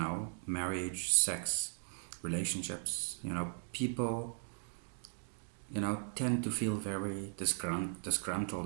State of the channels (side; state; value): left; silent; 53 dB below the other